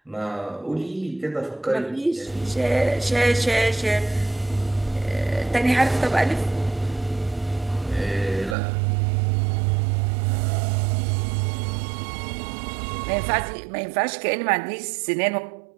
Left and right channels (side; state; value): left; drops out; at 8.6 s